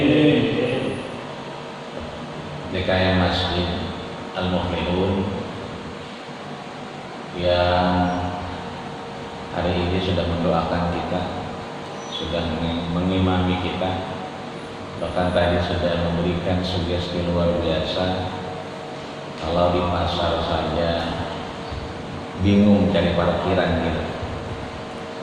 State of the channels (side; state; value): both; identical; correlation 1.00